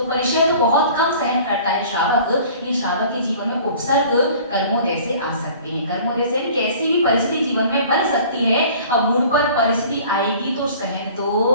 परिशह तो बहुत कम सहन करता है श्रावक, लेकिन श्रावक के जीवन में उपसर्ग कर्मोदय से आ सकते हैं। कर्मोदय से कैसी भी परिस्थिति जीवन में बन सकती है, अब मूड पर परिस्थिति आएगी तो सहन तो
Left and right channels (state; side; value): inverted; both; correlation -0.47